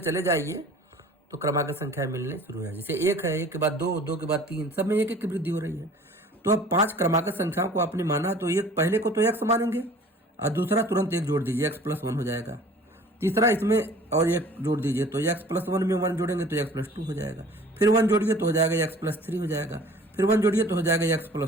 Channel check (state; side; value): normal; both; correlation 0.48